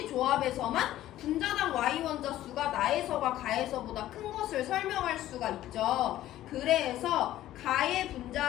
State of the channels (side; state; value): right; quieter; 13.9 dB